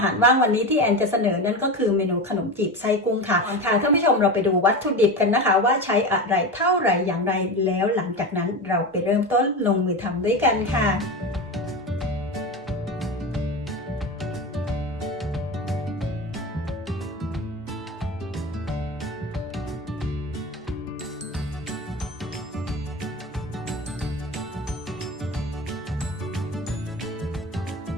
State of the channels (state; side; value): normal; both; correlation 0.23